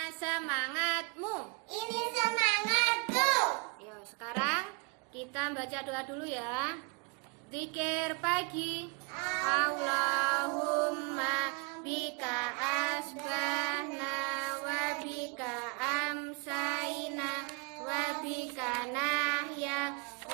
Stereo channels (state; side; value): quieter; left; 31.9 dB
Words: semangatmu? Ini semangatku. Yo, sekarang kita baca doa dulu ya. Zikir pagi. Allahumma bika asbahna wa bika amsayna wa bika nahya